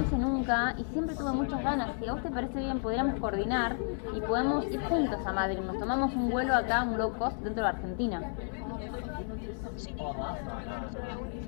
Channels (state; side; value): silent; right; 56 dB below the other